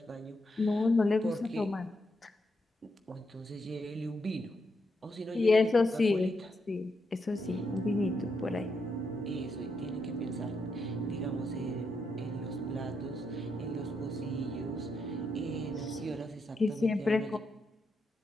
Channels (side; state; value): both; normal; correlation 0.82